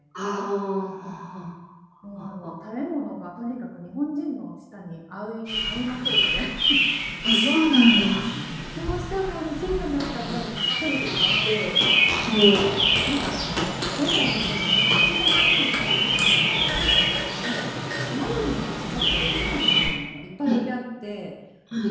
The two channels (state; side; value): identical; both; correlation 1.00